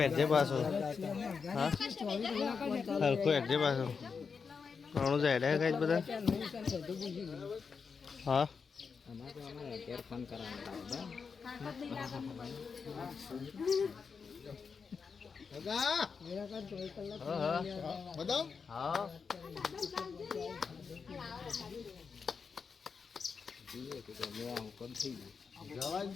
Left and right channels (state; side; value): quieter; right; 5.6 dB